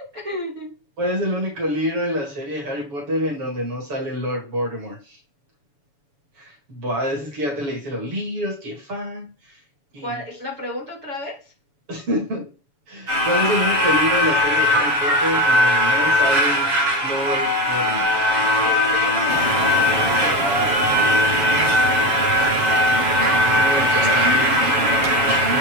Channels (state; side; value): late; left; 7.1 ms